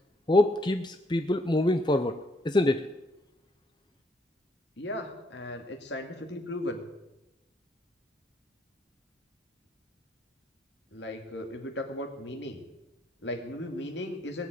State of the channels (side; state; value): both; normal; correlation 0.71